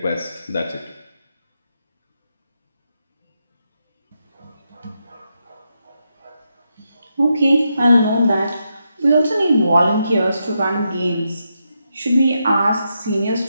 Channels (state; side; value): inverted; both; correlation -0.84